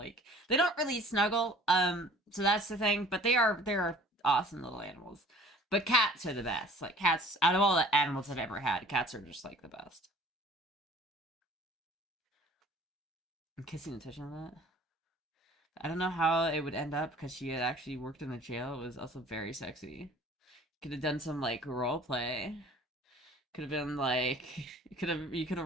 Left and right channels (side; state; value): both; normal; correlation 0.49